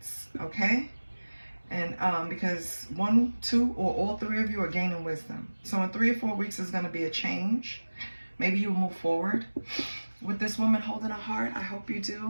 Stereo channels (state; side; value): inverted; both; correlation -1.00